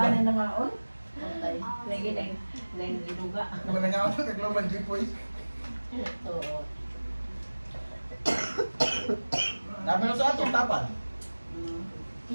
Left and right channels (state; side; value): inverted; both; correlation -1.00